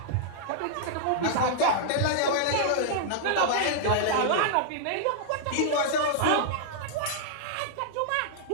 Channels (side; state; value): both; different; correlation -0.01